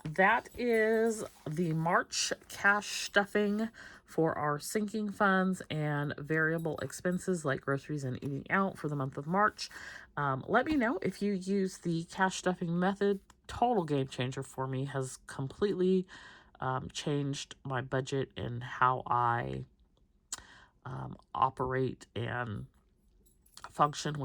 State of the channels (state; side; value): identical; both; correlation 1.00